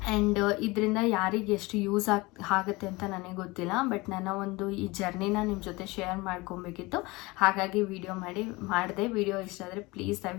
ಆ್ಯಂಡ್ ಇದರಿಂದ ಯಾರಿಗೆ ಎಷ್ಟು ಯೂಸ್ ಆಗುತ್ತೆ ಅಂತ ನನಗೆ ಗೊತ್ತಿಲ್ಲ. ಬಟ್ ನನ್ನ ಒಂದು ಈ ಜರ್ನಿನ ನಿಮ್ಮ ಜೊತೆ ಶೇರ್ ಮಾಡ್ಕೊಬೇಕಿತ್ತು, ಹಾಗಾಗಿ ಮಾಡಿದೆ. ವಿಡಿಯೋ ಇಷ್ಟ ಆದರೆ ಪ್ಲೀಸ್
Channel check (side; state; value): right; quieter; 23.1 dB